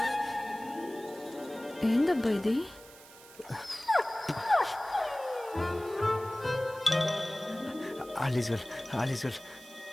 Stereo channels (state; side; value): noise; right; hiss, 20 dB below the sound